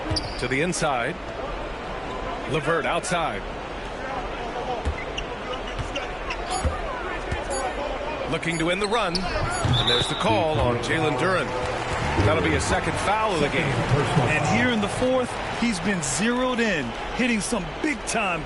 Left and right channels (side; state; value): both; identical; correlation 1.00